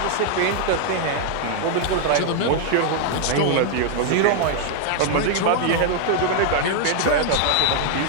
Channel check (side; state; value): both; different; correlation 0.00